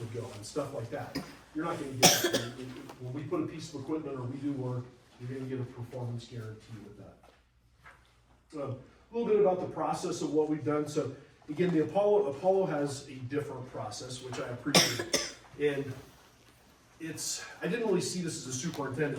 go and stuff like that. You're not gonna get that. When we put a piece of equipment or we do work, you're gonna get a performance guarantee with that. A little bit about the process of what we've done. So again, the Apollo has a different process, which I appreciate. And I didn't really see this as a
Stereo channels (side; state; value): both; identical; correlation 1.00